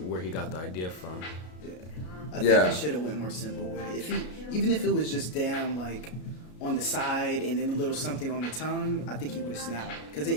where he got the idea from. I think Yeah. he should have went more simple with it. Even if it was just damn like on the side and then a little something on the tongue, I think he would have snapped. Because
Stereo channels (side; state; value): right; late; 33 ms